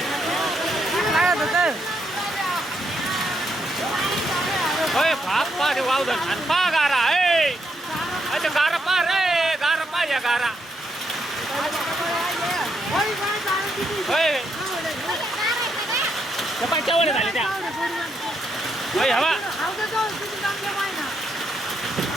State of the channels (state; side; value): normal; both; correlation 0.78